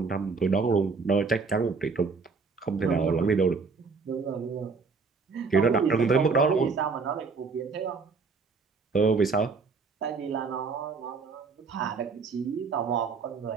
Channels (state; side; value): quieter; left; 4.7 dB